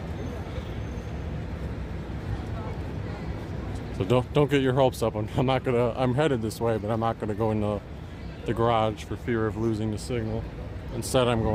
So don't get your hopes up. I'm headed this way, but I'm not gonna go into the garage for fear of losing the signal. Instead, I'm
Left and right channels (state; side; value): identical; both; correlation 1.00